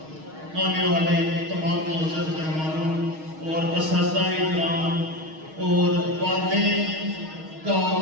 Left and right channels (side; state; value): left; late; 6.4 ms